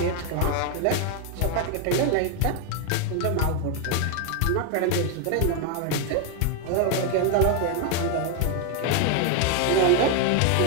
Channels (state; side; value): different; both; correlation 0.01